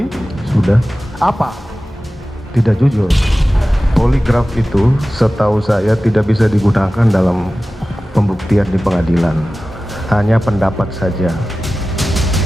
Sudah. Apa? Tidak jujur. Poligraf itu setahu saya tidak bisa digunakan dalam pembuktian di pengadilan. Hanya pendapat saja.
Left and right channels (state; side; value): normal; both; correlation 0.96